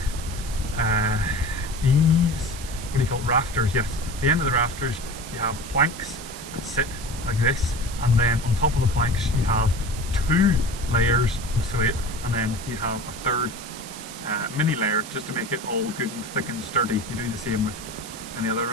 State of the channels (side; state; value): right; noise; hiss, 13 dB below the sound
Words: eaves, what do you call it, rafters, yes. At the end of the rafters you have planks that sit like this, and then on top of the planks you have 2 layers of slate, and then you have a third mini layer just to make it all good and thick and sturdy. You do the same with any other